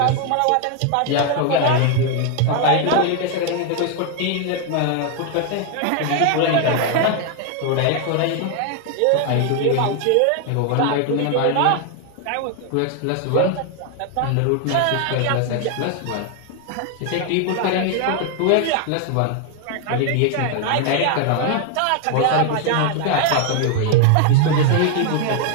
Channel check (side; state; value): both; different; correlation 0.01